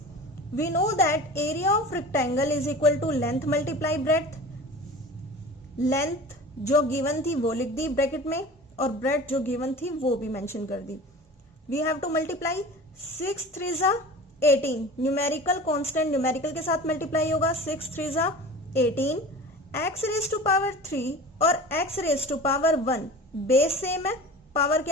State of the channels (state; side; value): normal; both; correlation 0.37